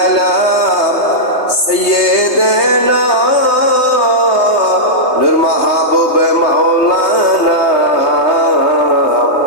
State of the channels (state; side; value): late; right; 3.3 ms